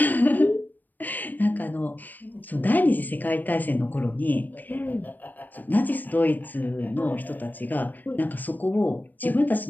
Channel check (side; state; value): right; late; 0.087 ms